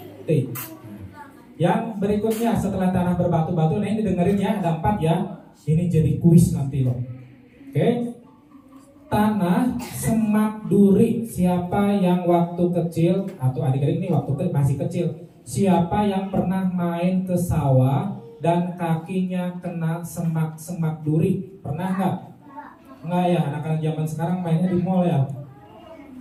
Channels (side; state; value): both; identical; correlation 1.00